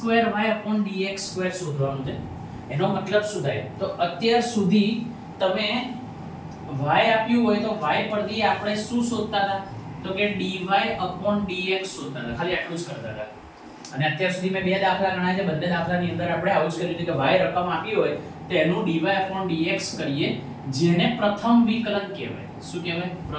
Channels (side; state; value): both; identical; correlation 1.00